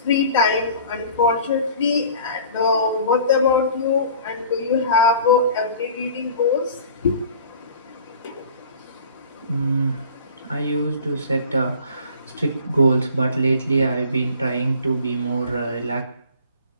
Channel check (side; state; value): both; inverted; correlation -0.45